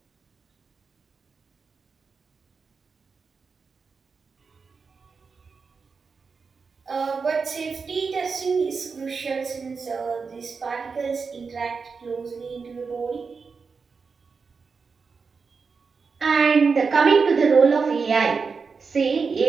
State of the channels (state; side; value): quieter; left; 5.1 dB